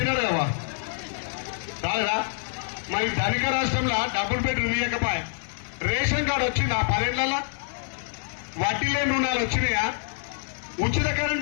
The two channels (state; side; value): silent; right; digital silence